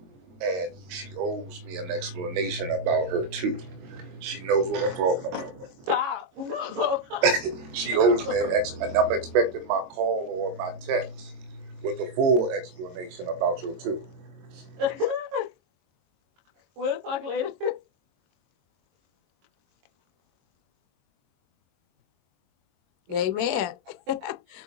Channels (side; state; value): left; late; 22 ms